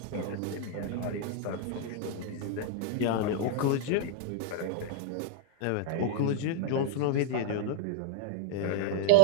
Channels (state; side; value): different; both; correlation 0.00